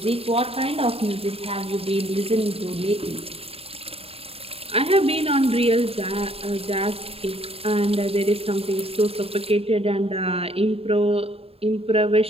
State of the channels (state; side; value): late; left; 0.28 ms